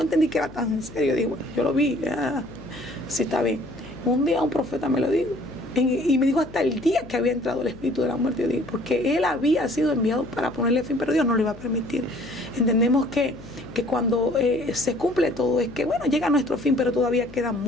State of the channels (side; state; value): left; noise; hum, 18 dB below the sound